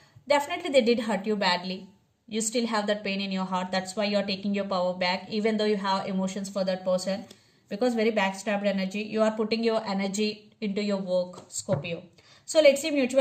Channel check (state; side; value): identical; both; correlation 1.00